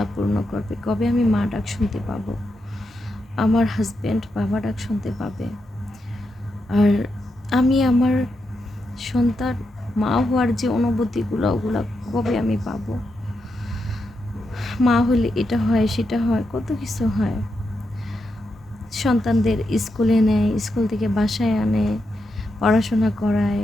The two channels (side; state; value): both; normal; correlation 0.85